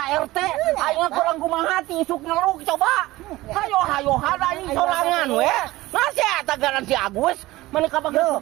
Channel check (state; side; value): quieter; left; 18.3 dB